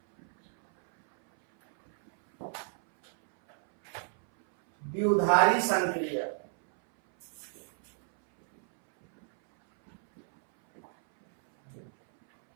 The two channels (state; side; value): silent; left; 58 dB below the other